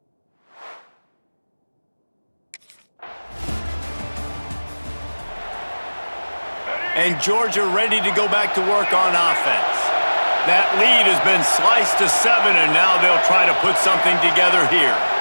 And Georgia ready to go back to work on offense. That lead has been sliced to 7, and now they'll try to put something together here.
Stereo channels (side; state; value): both; inverted; correlation -1.00